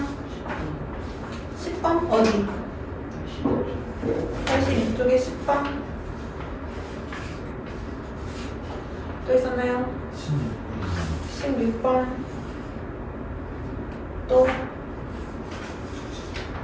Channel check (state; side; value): identical; both; correlation 1.00